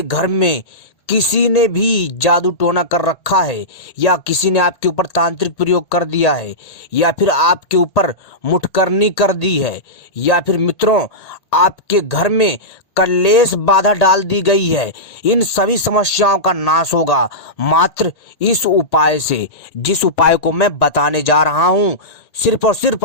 घर में किसी ने भी जादू टोना कर रखा है, या किसी ने आपके ऊपर तांत्रिक प्रयोग कर दिया है, या फिर आपके ऊपर मुठकरनी कर दी है, या फिर मित्रों आपके घर में कलेश बाधा डाल दी गई है। इन सभी समस्याओं का नाश होगा मात्र इस उपाय से, जिस उपाय को मैं बताने जा रहा हूं। सिर्फ और सिर्फ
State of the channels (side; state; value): right; late; 1.8 ms